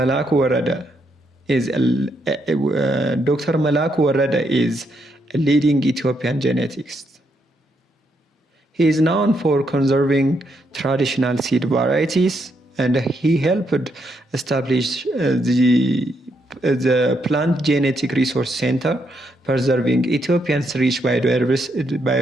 Worede is a leading Ethiopian geneticist. He is known for conserving traditional seed varieties, and he helped establish the Plant Genetic Resource Center, preserving Ethiopia's rich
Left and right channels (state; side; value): normal; both; correlation 0.77